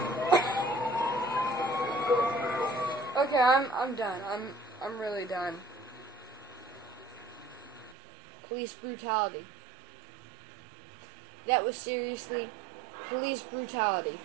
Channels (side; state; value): left; drops out; at 8.0 s